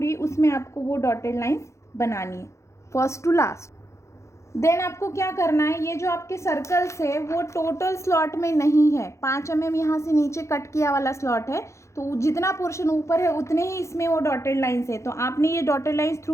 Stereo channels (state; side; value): late; right; 0.14 ms